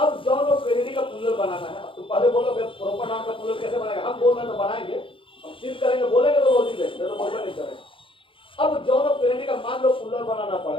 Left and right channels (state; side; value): late; right; 0.25 ms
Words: जॉन ऑफ कैनेडी का पुल्लर बनाना है। तो पहले बोलोगे प्रॉपर नाउन का पुल्लर कैसे बनाएगा? हम बोल रहे हैं तो बनाएंगे, हम सिर्फ करेंगे, बोलेंगे तो रोज ही नहीं तो बोलना नहीं करेंगे। अब जॉन ऑफ कैनेडी का मान लो पुल्लर बनाना